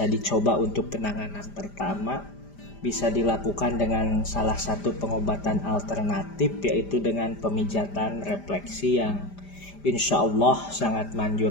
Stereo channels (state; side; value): late; right; 5.0 ms